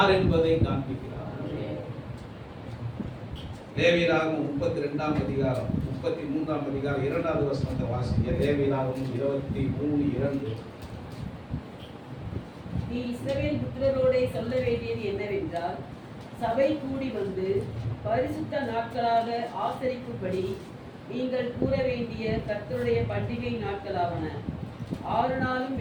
என்பதை காண்பிக்கிறார். லேவியராகமம் 32ஆம் அதிகாரம் 33ஆம் அதிகாரம் 2வது வசனத்தை வாசிங்க. லேவியராகமம் 23:2. நீ இஸ்ரவேல் புத்திரரோடே சொல்ல வேண்டியது என்னவென்றால், சபை கூடி வந்து பரிசுத்த நாட்களாக ஆசரிக்கும்படி நீங்கள் கூற வேண்டிய கர்த்தருடைய பண்டிகை நாட்களாவன. 6 நாளும்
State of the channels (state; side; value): identical; both; correlation 1.00